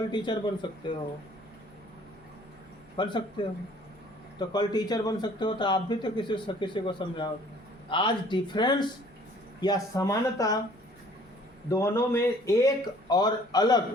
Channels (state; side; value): normal; both; correlation 0.55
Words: टीचर बन सकते हो, बन सकते हो। तो कल टीचर बन सकते हो तो आप भी तो किसी को समझाओगे। आज डिफरेंस या समानता दोनों में एक और